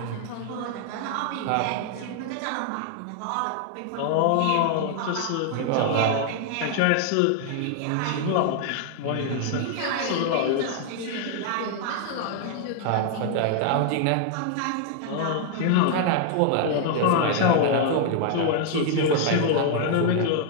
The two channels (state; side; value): different; both; correlation 0.00